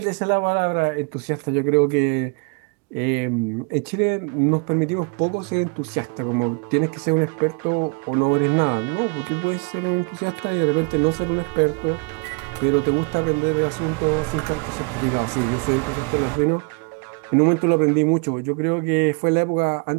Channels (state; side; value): quieter; left; 32.7 dB